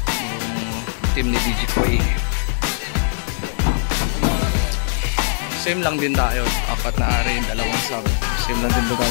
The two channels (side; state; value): right; silent; digital silence